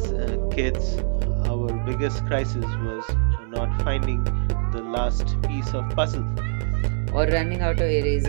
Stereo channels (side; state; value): left; silent; 63 dB below the other